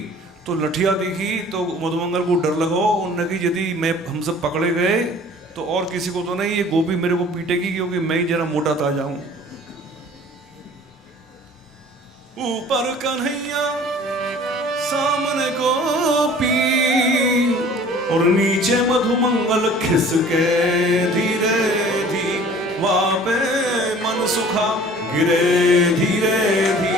तो लठिया दिखी तो मधुमंगल को डर लगा। उन्होंने कि यदि मैं हम सब पकड़े गए तो और किसी को तो नहीं, ये गोपी मेरे को पीटेगी, क्योंकि मैं ही जरा मोटा ताजा हूं। ऊपर कन्हैया सामने गोपी, और नीचे मधुमंगल खिसके धीरे धीरे, वापे मन सुखा गिरे धीरे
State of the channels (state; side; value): normal; both; correlation 0.49